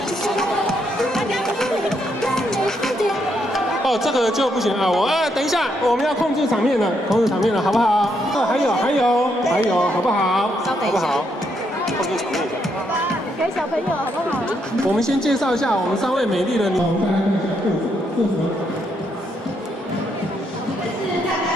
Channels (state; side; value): normal; both; correlation 0.77